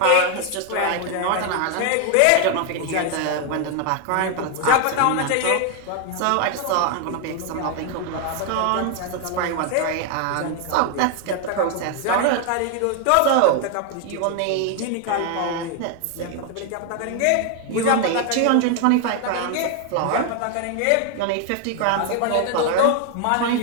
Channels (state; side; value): different; both; correlation 0.01